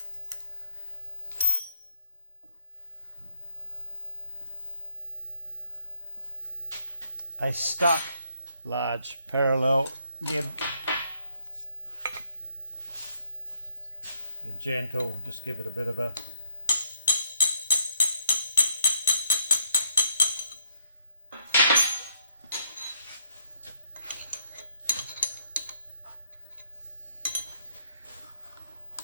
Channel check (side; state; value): both; inverted; correlation -0.72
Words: A stuck large parallel gib. They're gentle, just give it a bit of a